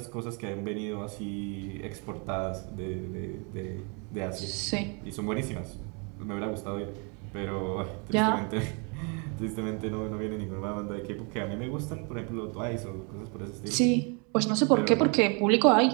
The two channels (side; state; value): left; quieter; 34.7 dB